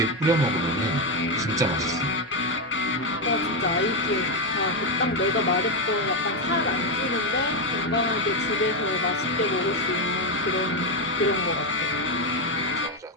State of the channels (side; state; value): both; normal; correlation 0.07